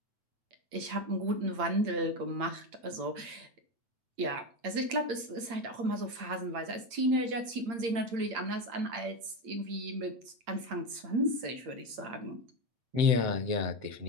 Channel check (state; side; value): late; left; 8.7 ms